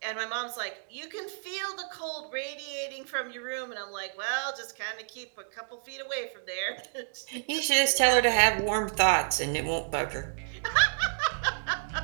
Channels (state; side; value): silent; left; digital silence